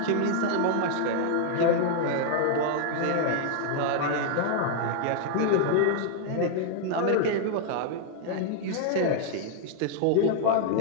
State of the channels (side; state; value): both; different; correlation 0.00